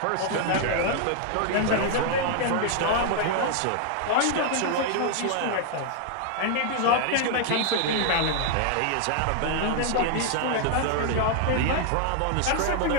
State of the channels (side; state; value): both; different; correlation 0.00